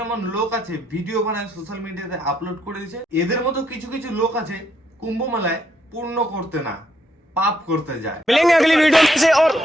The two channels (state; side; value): normal; both; correlation 0.74